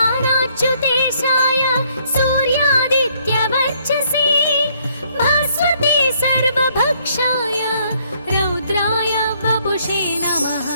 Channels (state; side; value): inverted; both; correlation -0.67